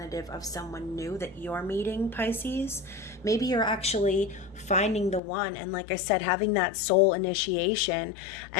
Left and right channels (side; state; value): right; drops out; at 5.2 s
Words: of someone new that you're meeting, Pisces. Maybe you're actually finding the one, and like I said, having that soul initiation